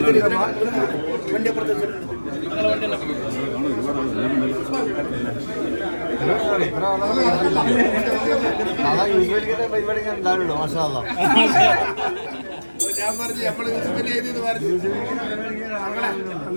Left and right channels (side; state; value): both; inverted; correlation -1.00